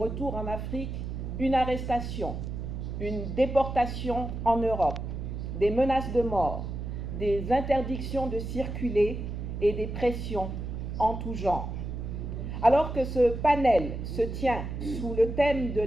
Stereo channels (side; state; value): right; noise; hum, 5 dB below the sound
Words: en Afrique, une arrestation, une déportation en Europe, des menaces de mort, des interdictions de circuler et des pressions en tout genre. Alors que ce panel se tient sous le thème de